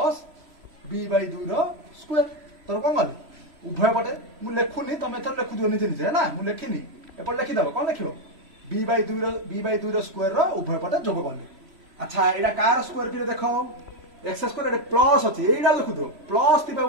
b/2 whole square. तो कोन गले उभय पटे मु लेखुनी तमे थर लेखु दियो निजे ना मु लेखिनी एपर लेखि दबो कोन लेखियो b/2 रो स्क्वायर रो उभय पटे जोग करले। अच्छा एडा कार स्क्वायर कि देखो x² एडे प्लस अछि एडा लेखु दियो प्लस तिबा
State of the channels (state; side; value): late; left; 3.0 ms